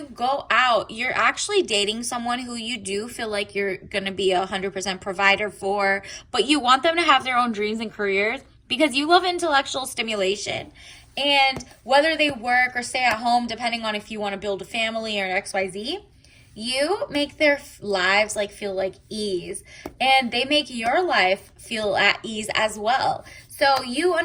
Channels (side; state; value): both; identical; correlation 1.00